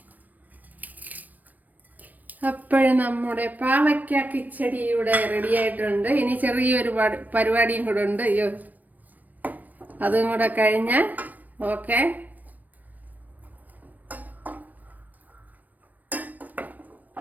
അപ്പോഴും നമ്മുടെ പാവയ്ക്ക കിച്ചടി ഇവിടെ റെഡി ആയിട്ടുണ്ട്. ഇനി ചെറിയൊരു പരിപാടിയും കൂടെ ഉണ്ട്. അതും കൂടെ കഴിഞ്ഞാൽ ഓക്കെ.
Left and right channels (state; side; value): late; left; 0.084 ms